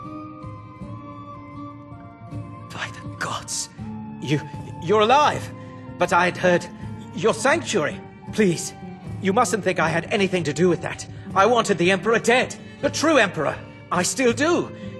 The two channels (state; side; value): identical; both; correlation 1.00